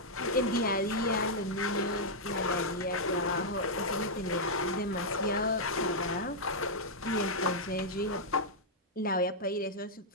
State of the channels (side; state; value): both; normal; correlation -0.05